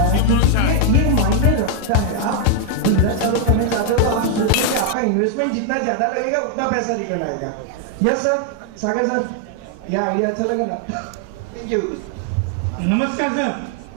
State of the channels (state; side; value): different; both; correlation 0.00